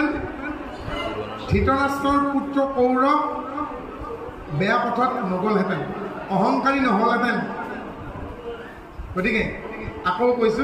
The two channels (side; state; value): both; identical; correlation 1.00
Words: ধৃতৰাষ্ট্ৰৰ পুত্ৰ কৌৰৱ বেয়া পথত নগ'লহেঁতেন অহংকাৰী নহ'লহেঁতেন গতিকে আকৌ